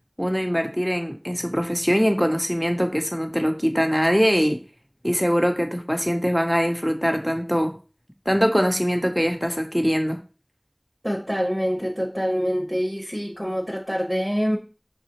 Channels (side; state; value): both; identical; correlation 1.00